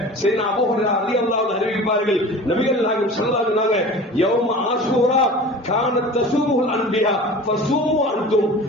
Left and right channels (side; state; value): both; normal; correlation 0.38